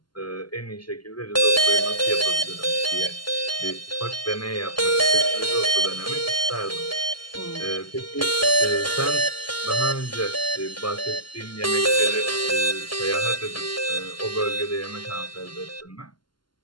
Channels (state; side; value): late; right; 0.71 ms